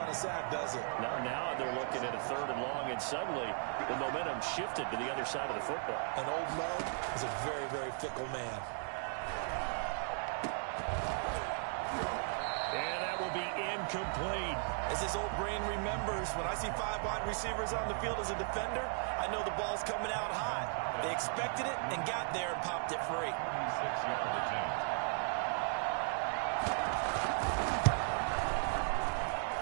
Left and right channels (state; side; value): silent; left; 53 dB below the other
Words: a sack, does it? Now they're looking at a 3rd and long, and suddenly the momentum shifted to the other side of the football. And old Mo is a very, very fickle man. And that will be incomplete. As his old brain remembers, when I see 5 wide receivers on the field as a defender, I know the ball's coming out high. They expected it and got there and popped it free. 26-yard attempt.